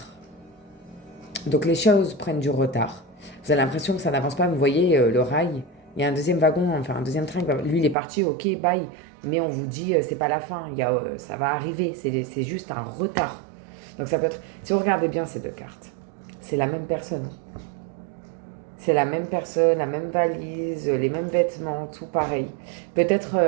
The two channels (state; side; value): drops out; left; at 8.0 s